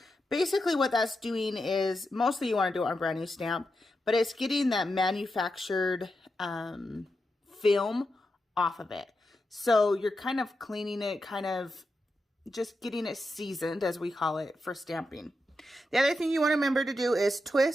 Basically, what that's doing is, mostly you want to do it on a brand new stamp, but it's getting that manufactured film off of it. So you're kind of cleaning it, kind of just getting it seasoned, as we call it, for stamping. The other thing you want to remember to do is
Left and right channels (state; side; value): normal; both; correlation 0.88